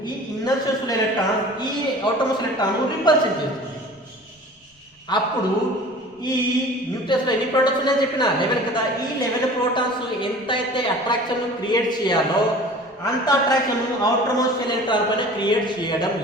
ఈ ఇన్నర్ షెల్స్లో ఎలక్ట్రాన్స్ ఈ అవుటర్ మోస్ట్ ఎలక్ట్రాన్ రిపల్షన్ చేస్తుంది. అప్పుడు ఈ న్యూక్లియస్లో ఎన్ని ప్రోటాన్స్ ఉన్నాయని చెప్పిన లెవెల్ కదా, ఈ లెవెల్ ప్రోటాన్స్ ఎంతైతే అట్రాక్షన్ క్రియేట్ చేయాలో అంత అట్రాక్షన్ అవుటర్ మోస్ట్ ఎలక్ట్రాన్ పైన క్రియేట్ చేయడం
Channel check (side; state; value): both; normal; correlation 0.43